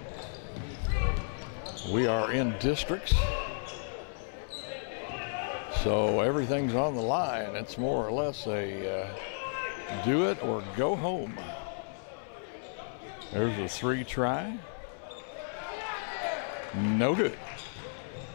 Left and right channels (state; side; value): silent; right; 56 dB below the other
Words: We are in districts, so everything's on the line. It's more or less a do it or go home. There's a 3 try. No good.